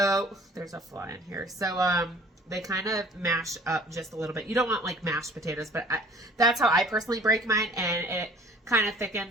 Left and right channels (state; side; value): normal; both; correlation 0.51